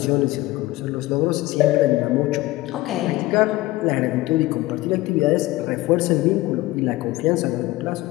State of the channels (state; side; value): quieter; right; 18.3 dB